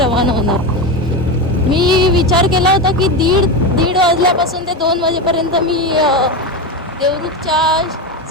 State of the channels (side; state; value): both; normal; correlation 0.17